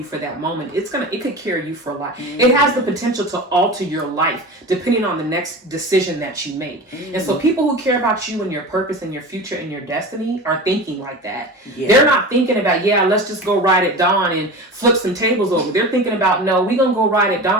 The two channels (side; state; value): both; normal; correlation 0.31